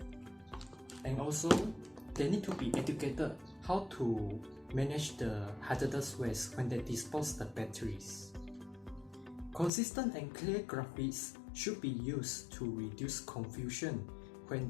And also, they need to be educated how to manage the hazardous waste when they dispose the batteries. Consistent and clear graphics should be used to reduce confusion when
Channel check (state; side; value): drops out; right; at 9.7 s